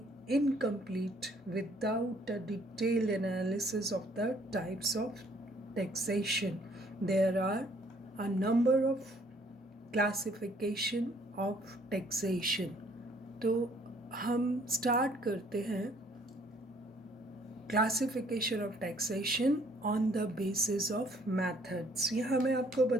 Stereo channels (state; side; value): normal; both; correlation 0.62